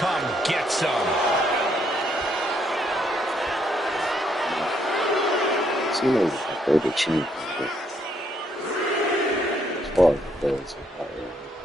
get some. Cena is my favorite champion. As far as it goes,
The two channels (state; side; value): normal; both; correlation 0.72